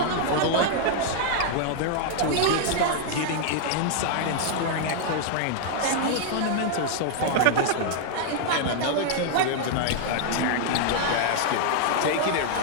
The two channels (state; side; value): different; both; correlation 0.00